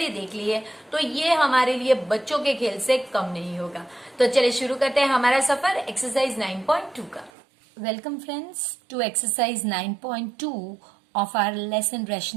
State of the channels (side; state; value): left; drops out; at 7.3 s